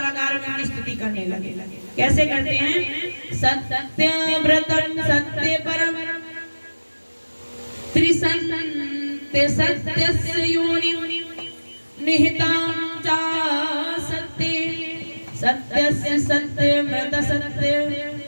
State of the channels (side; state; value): both; inverted; correlation -1.00